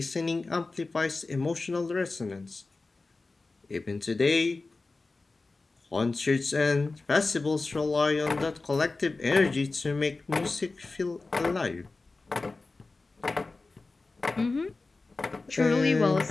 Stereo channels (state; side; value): quieter; right; 3.5 dB